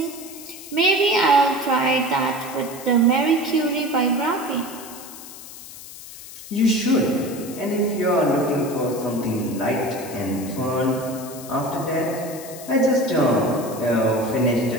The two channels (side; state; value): left; noise; hiss, 15 dB below the sound